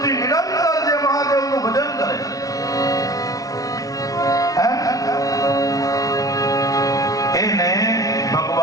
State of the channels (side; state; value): right; late; 0.18 ms